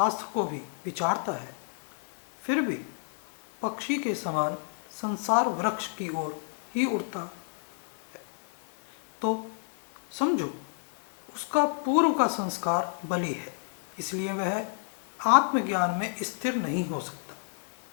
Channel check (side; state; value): right; silent; digital silence